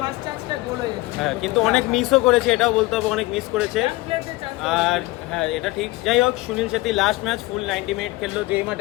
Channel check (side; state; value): right; quieter; 20.5 dB